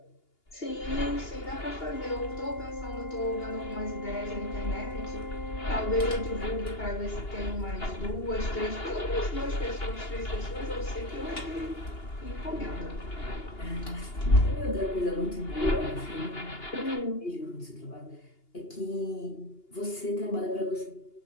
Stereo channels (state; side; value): late; right; 2.8 ms